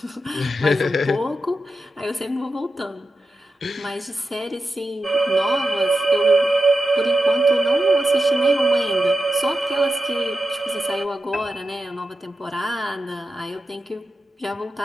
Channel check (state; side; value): normal; both; correlation 0.91